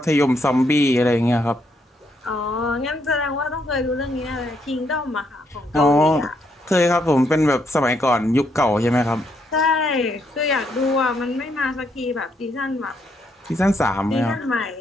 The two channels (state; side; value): normal; both; correlation 0.75